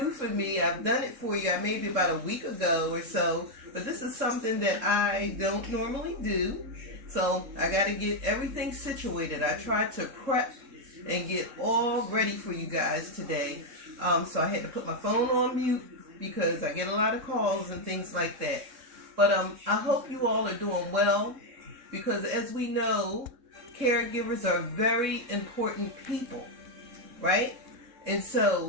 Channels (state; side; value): late; left; 3.7 ms